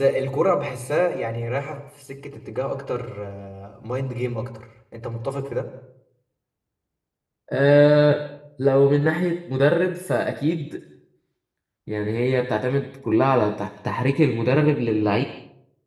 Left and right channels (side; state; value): both; identical; correlation 1.00